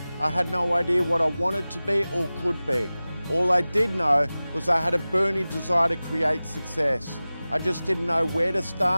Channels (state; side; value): inverted; both; correlation -0.97